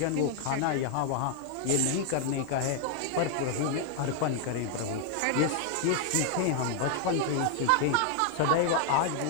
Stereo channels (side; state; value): both; different; correlation 0.00